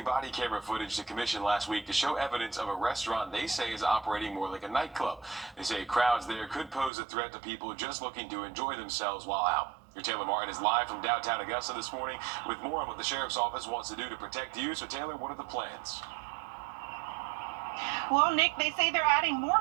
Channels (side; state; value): left; drops out; at 6.9 s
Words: body camera footage to commission last week to show evidence of a restaurant they say is operating more like a nightclub. They say crowds there could pose a threat to people just looking to enjoy themselves while out. Your Taylor Martin is live from downtown Augusta this morning with more on what the Sheriff's Office wants to do to protect you. So, Taylor, what are the plans? Well, Nick, they say they're adding more